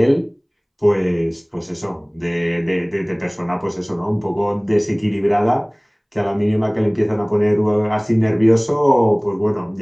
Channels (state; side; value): identical; both; correlation 1.00